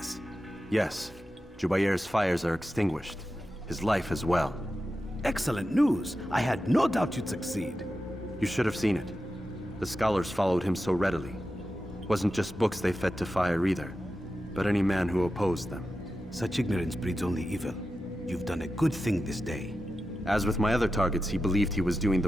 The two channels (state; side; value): normal; both; correlation 0.91